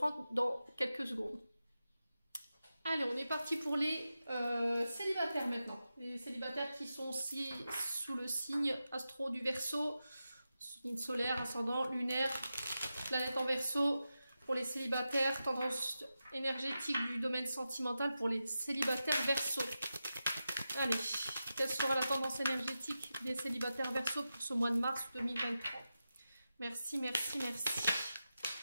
dans quelques secondes. Allez, on est parti pour les célibataires maintenant. Les célibataires qui sont sous le signe astro du Verseau, signe solaire, ascendant, lunaire, planète en Verseau. Pour les célibataires, tendance énergétique du domaine sentimental pour les célibataires Verseau. Allez, quelle sera la tendance énergétique des célibataires Verseau pour ce mois de mars 2023? Merci, merci, merci.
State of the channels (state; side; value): inverted; both; correlation -0.91